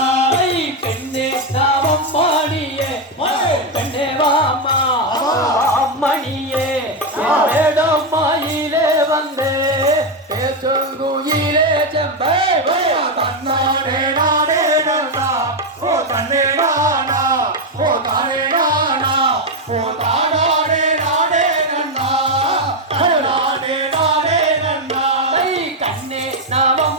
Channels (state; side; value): normal; both; correlation 0.06